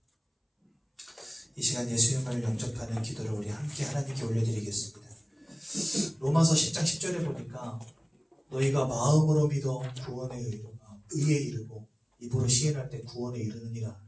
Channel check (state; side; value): identical; both; correlation 1.00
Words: 이 시간 예수님을 영접하는 기도를 우리 함께 하나님께 올려드리겠습니다. 로마서 10장 10절에 보니까 너희가 마음으로 믿어 의에 이르고 입으로 시인할 때 구원에 이르느니라